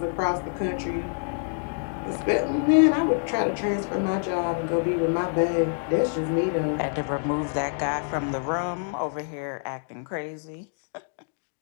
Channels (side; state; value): right; silent; digital silence